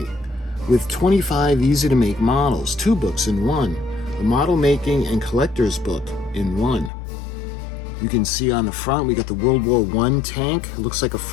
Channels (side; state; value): right; drops out; at 6.9 s